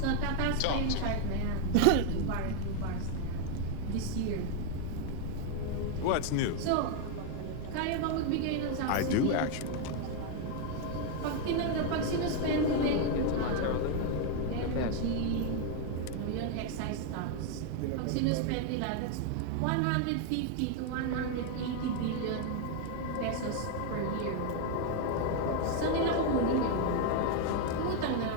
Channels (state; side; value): different; both; correlation 0.01